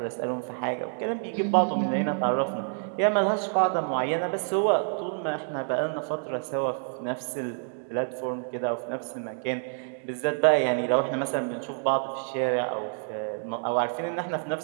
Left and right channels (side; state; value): left; silent; digital silence